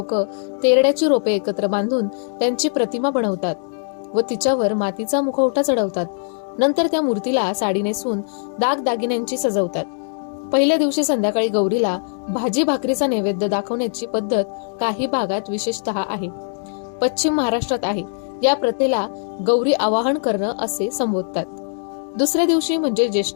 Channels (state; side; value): silent; right; digital silence